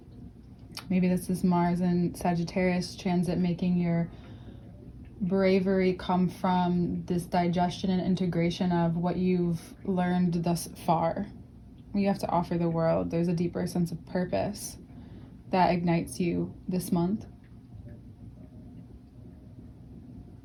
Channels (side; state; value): both; identical; correlation 1.00